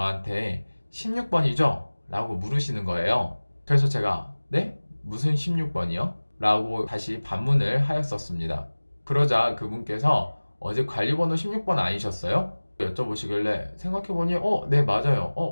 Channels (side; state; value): both; inverted; correlation -1.00